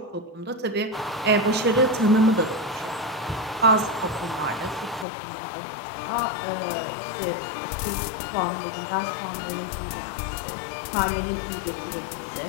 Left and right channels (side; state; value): right; drops out; at 5.1 s